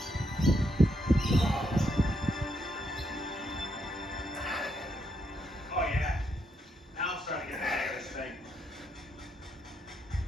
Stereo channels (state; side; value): normal; both; correlation 0.77